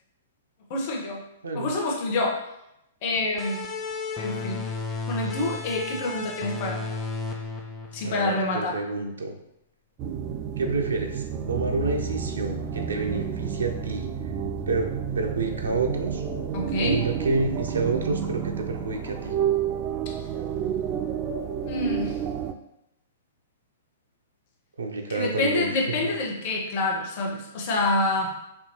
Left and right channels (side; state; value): both; inverted; correlation -0.30